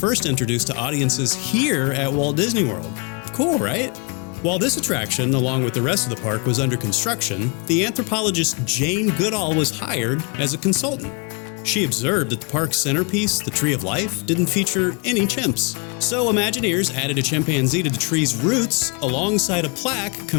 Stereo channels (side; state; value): right; quieter; 33.4 dB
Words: introduced to audiences here at Walt Disney World. Cool, right? While this attraction, along with the rest of the park, was under construction, the anthropologist Jane Goodall was hired as a consultant. She observed that the park's centerpiece, the Tree of Life, didn't feature any chimps. So Imagineers added a chimpanzee to the tree's roots alongside a plaque